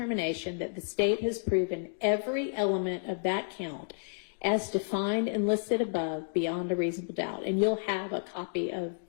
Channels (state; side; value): silent; right; digital silence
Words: that the state has proven every element of that count as defined and listed above beyond a reasonable doubt. And you'll have a copy of